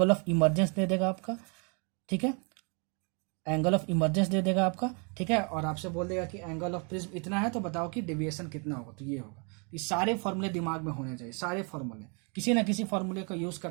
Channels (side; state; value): left; quieter; 35.9 dB